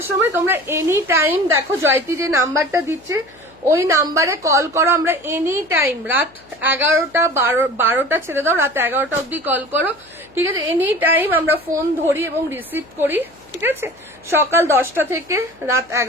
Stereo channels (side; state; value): left; noise; hum, 29 dB below the sound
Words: সময় তোমরা এনি টাইম দেখো জয়তি যে নাম্বারটা দিচ্ছে ওই নাম্বারে কল করো। আমরা এনি টাইম রাত 11টা 12টা ছেড়ে দাও, রাত 11টা অব্দি কল করো। ঠিক আছে, এনি টাইম আমরা ফোন ধরি এবং রিসিভ করি। ঠিক আছে, সকাল 10টা থেকে রাত